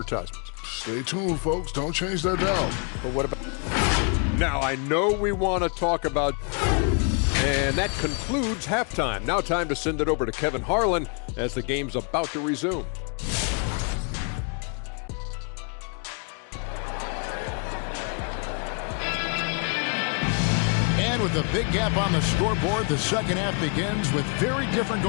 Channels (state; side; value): quieter; right; 37.9 dB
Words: Stay tuned, folks. Don't change that down. But what about... Now, I know we want to talk about... And that concludes halftime. Now time to send it over to Kevin Harlan as the game's about to resume. And with a big gap on the scoreboard, the second half begins with very different